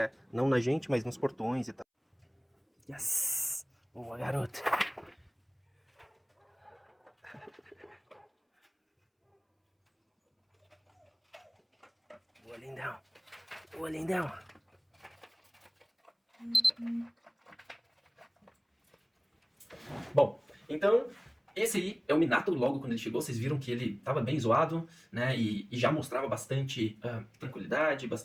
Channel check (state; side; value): identical; both; correlation 1.00